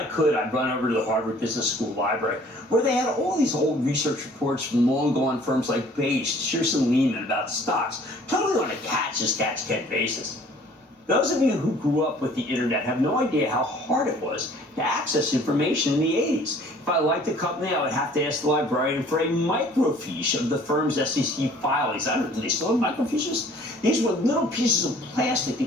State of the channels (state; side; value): normal; both; correlation 0.54